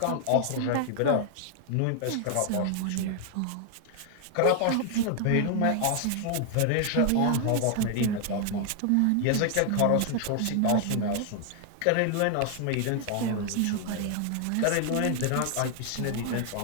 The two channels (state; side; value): different; both; correlation 0.00